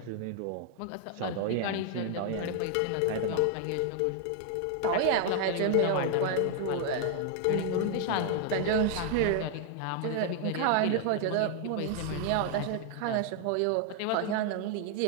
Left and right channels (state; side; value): different; both; correlation 0.00